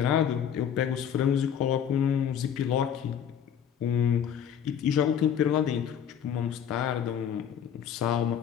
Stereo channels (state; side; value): quieter; right; 8.7 dB